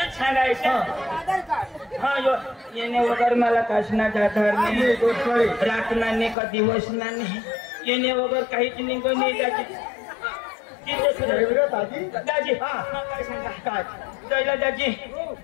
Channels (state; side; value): drops out; right; at 6.4 s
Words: सांगायचं हा येणे वगैरे मला काशनाचा आधार नाही रातना नाही का दिवस नाही येणे वगैरे काहीच निघून नाही दाजी काय सांगा काय दाजी